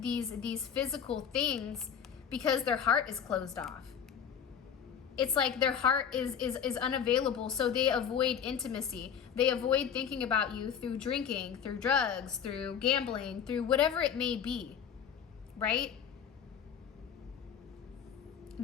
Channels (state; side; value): quieter; right; 7.9 dB